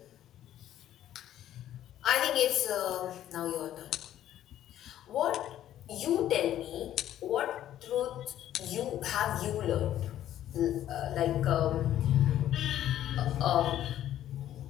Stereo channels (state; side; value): quieter; right; 12.0 dB